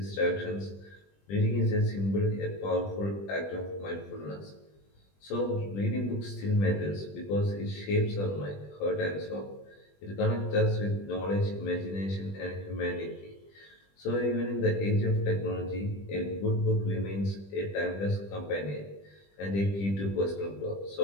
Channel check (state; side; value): late; right; 20 ms